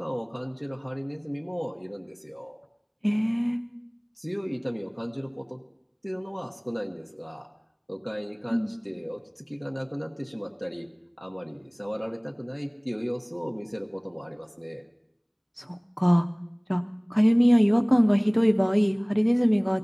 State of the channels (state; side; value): identical; both; correlation 1.00